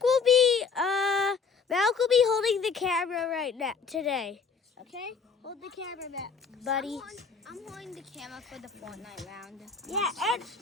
holding the camera right now today. Okay? Hold the camera back, buddy. I'm holding the camera for the Fortnite round. Yeah, and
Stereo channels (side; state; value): right; quieter; 5.4 dB